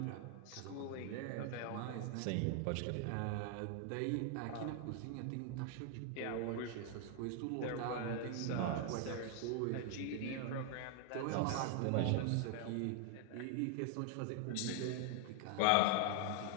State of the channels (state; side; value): different; both; correlation 0.00